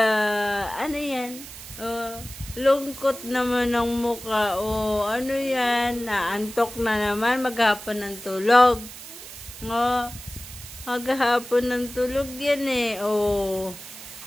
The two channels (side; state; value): right; noise; hiss, 14 dB below the sound